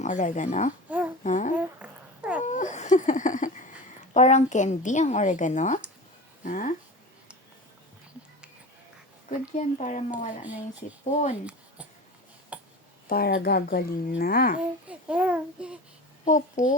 oregano? Ha? Parang candy ang oregano? Ha? Good yan para mawala na yung sipon. Para gagaling na.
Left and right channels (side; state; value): both; normal; correlation 0.32